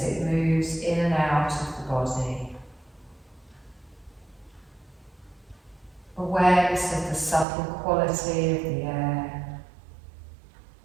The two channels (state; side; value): drops out; left; at 7.5 s